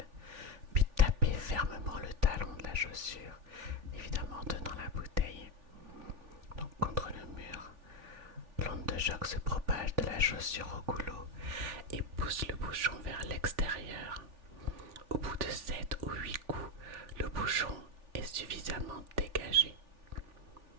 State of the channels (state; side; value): late; left; 3.4 ms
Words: puis taper fermement le talon de la chaussure, évidemment en tenant la bouteille. Donc contre le mur, l'onde de choc se propage de la chaussure au goulot et pousse le bouchon vers l'extérieur. Au bout de 7 ou 8 coups, le bouchon est suffisamment dégagé.